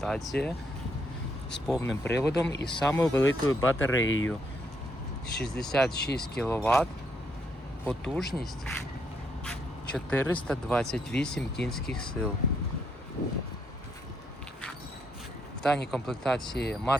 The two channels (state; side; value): normal; both; correlation 0.75